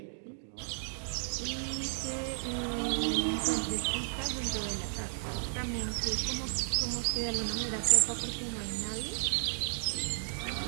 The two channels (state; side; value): silent; left; digital silence